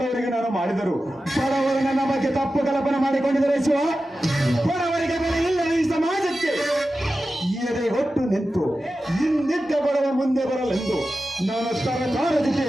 ನಾನು ಮಾಡಿದರು. ಬಡವರು ನನ್ನ ಬಗ್ಗೆ ತಪ್ಪು ಕಲ್ಪನೆ ಮಾಡಿಕೊಂಡಿದ್ದಾರೆ ಶಿವ. ಬಡವರಿಗೆ ಬೆಲೆ ಇಲ್ಲ ಈ ಸಮಾಜಕ್ಕೆ. ಎದೆ ಹೊಟ್ಟು ನಿಂತು ಹಿಂದಿದ್ದ ಬಡವ ಮುಂದೆ ಬರಲೆಂದು ನಾನು ಸರ್ಕಾರದಿಗೆ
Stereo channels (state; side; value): normal; both; correlation 0.93